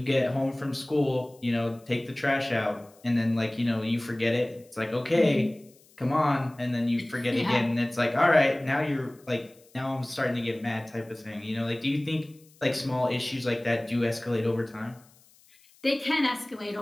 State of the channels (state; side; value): noise; left; hiss, 29 dB below the sound